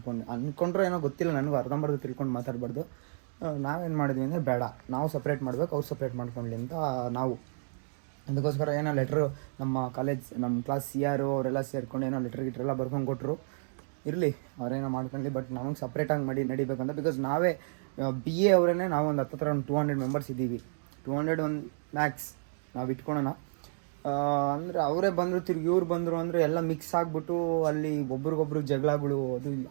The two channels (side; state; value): left; silent; digital silence